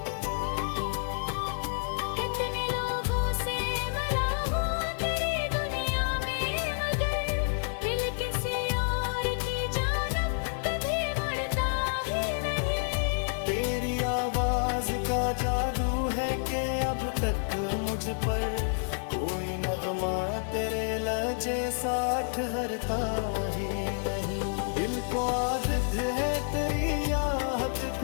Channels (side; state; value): right; silent; digital silence